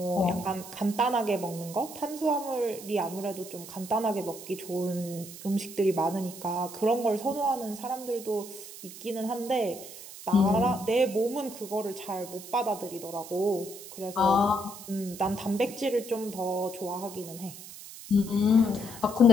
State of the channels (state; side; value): noise; right; hiss, 14 dB below the sound